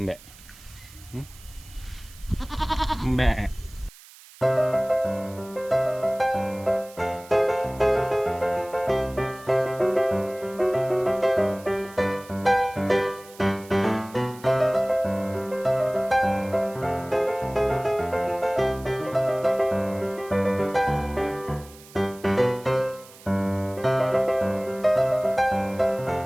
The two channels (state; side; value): noise; right; hiss, 22 dB below the sound